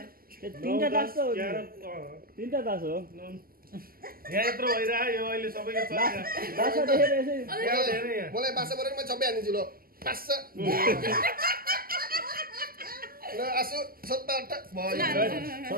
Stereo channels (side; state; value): left; late; 0.42 ms